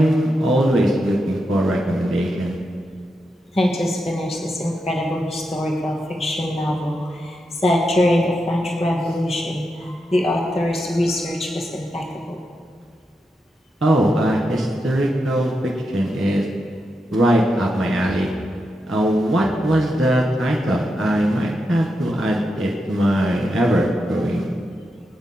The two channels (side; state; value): both; normal; correlation 0.86